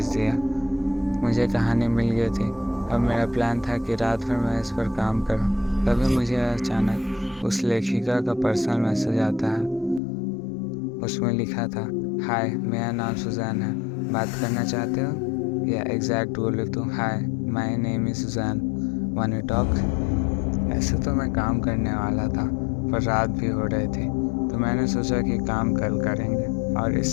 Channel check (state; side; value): drops out; right; at 10.0 s